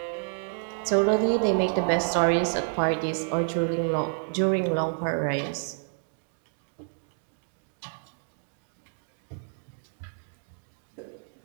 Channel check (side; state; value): left; silent; digital silence